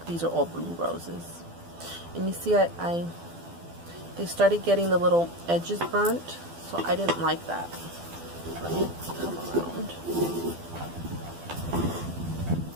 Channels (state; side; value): late; left; 12 ms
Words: these are all blue roses. And you see they started getting the little edges burnt, so I didn't like that. Let me come around